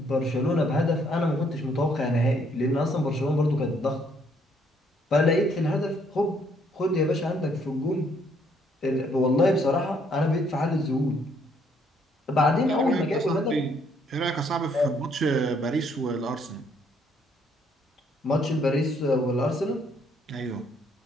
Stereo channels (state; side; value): normal; both; correlation 0.68